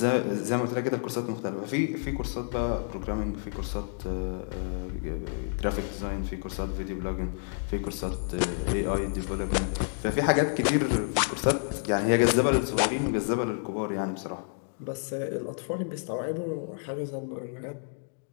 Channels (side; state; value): right; silent; digital silence